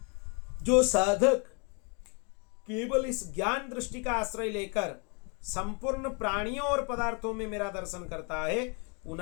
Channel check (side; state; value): right; quieter; 34.0 dB